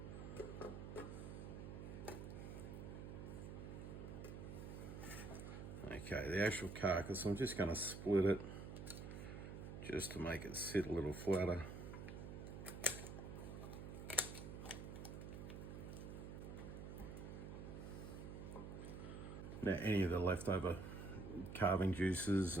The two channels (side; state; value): right; noise; hum, 8 dB below the sound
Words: Okay, the actual carcass, I'm just going to split it just to make it sit a little flatter. Now, any of the leftover carving juices